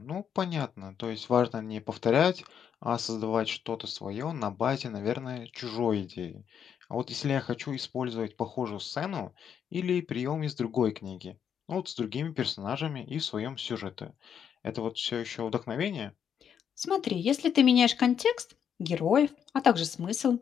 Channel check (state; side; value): quieter; right; 8.1 dB